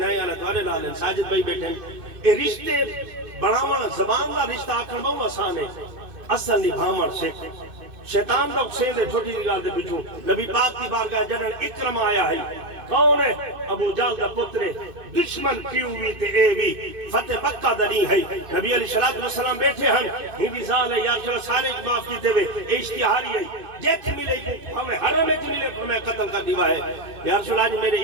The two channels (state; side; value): late; left; 2.6 ms